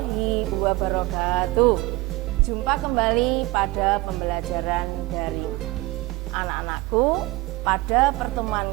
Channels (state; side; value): quieter; left; 21.3 dB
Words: wabarakatuh. Jumpa kembali pada pembelajaran daring. Anak-anakku, pada pertemuan